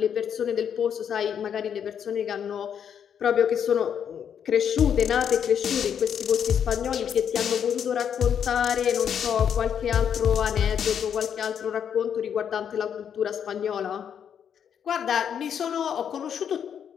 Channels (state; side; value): quieter; right; 8.3 dB